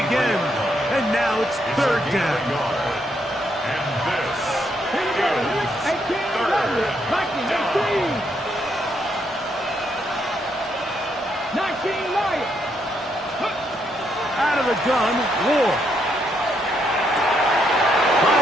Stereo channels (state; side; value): normal; both; correlation 0.76